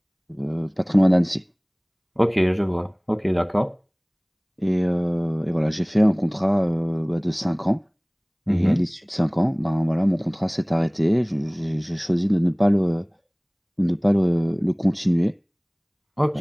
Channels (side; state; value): both; identical; correlation 1.00